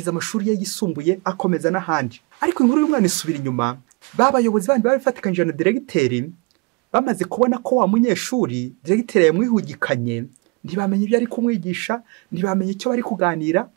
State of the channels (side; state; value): left; quieter; 29.4 dB